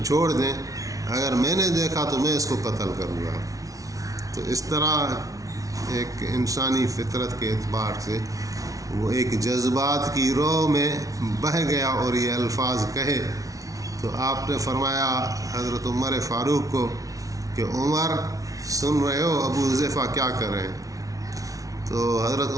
چھوڑ دیں، اگر میں نے دیکھا تو میں اس کو قتل کروں گا۔ تو اس طرح ایک انسانی فطرت کے اعتبار سے وہ ایک جذبات کی رو میں بہہ گیا اور یہ الفاظ کہے۔ تو آپ نے فرمایا حضرت عمر فاروق کو کہ عمر سن رہے ہو ابو حذیفہ کیا کر رہے ہیں؟ تو حضرت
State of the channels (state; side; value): late; left; 0.17 ms